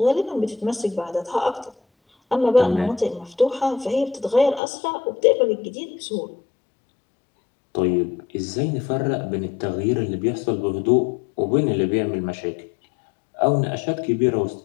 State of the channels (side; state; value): right; drops out; at 4.6 s